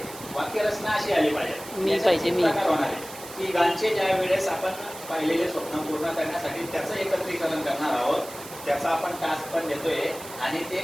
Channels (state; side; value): noise; right; hiss, 14 dB below the sound